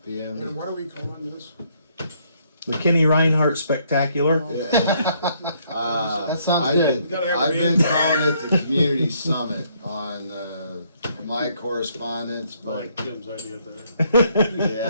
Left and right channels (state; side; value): inverted; both; correlation -0.69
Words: p.m. what are we calling this? The Kenny Reinhardt Spectacular. Yeah. That sounds I've good. been- Gotta have I've been names. calling it the Community Summit on my correspondence, I but like Tim's idea better.